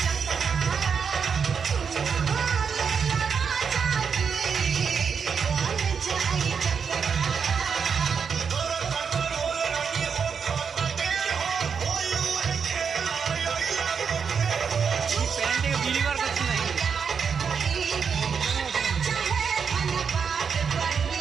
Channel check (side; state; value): left; quieter; 6.3 dB